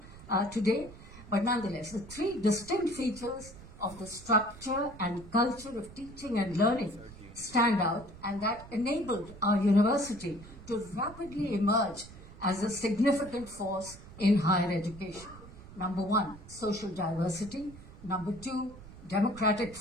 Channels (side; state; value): right; noise; rumble, 17 dB below the sound